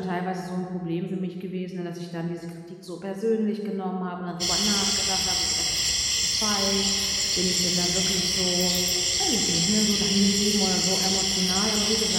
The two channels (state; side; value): identical; both; correlation 1.00